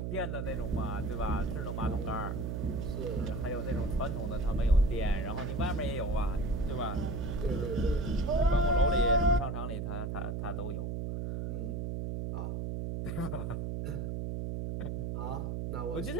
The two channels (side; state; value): right; noise; hum, 2 dB below the sound